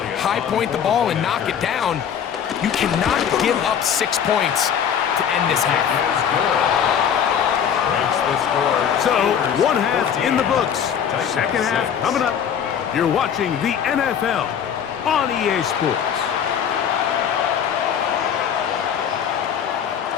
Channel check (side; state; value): right; quieter; 8.3 dB